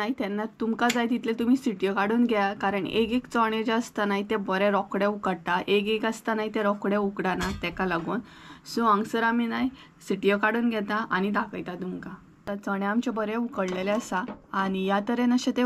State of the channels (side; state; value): both; identical; correlation 1.00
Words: तेन्ना तुमकां जाय तितले तुमी सिटयो काडून घ्या कारण एक चणे जे आसता न्हय ते बरे रोखडे उकडटा, एक आसता न्हय ते रोखडे उकडना तेका लागून. सो हांगसर आमी न्हय सिटयो काडून घेता आनी दाखयता तुमकां. चणे आमचे बरे उकडलेले आसा आनी ह्या तरेन अशें ते